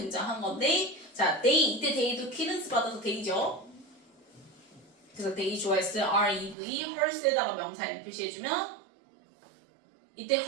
건데 자, they 이때 they도 키른스 받아서 they죠. 그래서 they 좋아했을 REV hers에다가 명사 M 표시해주면 이때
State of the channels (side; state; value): left; drops out; at 6.6 s